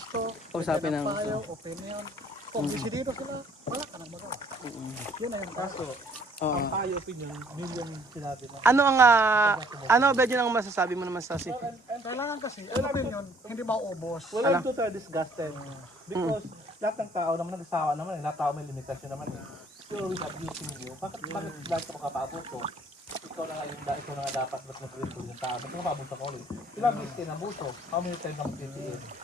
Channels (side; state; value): both; normal; correlation 0.60